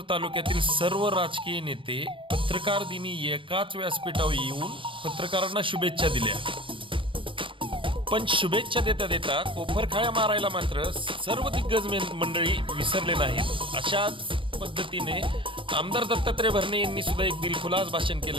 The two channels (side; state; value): left; late; 0.25 ms